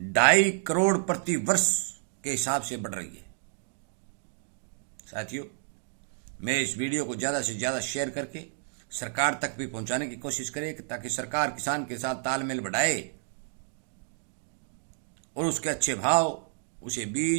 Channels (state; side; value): silent; left; digital silence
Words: 2.5 करोड़ प्रति वर्ष के हिसाब से बढ़ रही है। साथियों, मैं इस वीडियो को ज़्यादा से ज़्यादा शेयर करके सरकार तक भी पहुंचाने की कोशिश करे, ताकि सरकार किसान के साथ तालमेल बढ़ाए और उसके अच्छे भाव, उसे